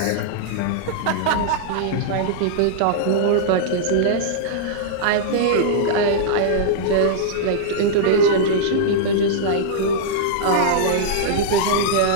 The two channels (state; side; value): different; both; correlation -0.02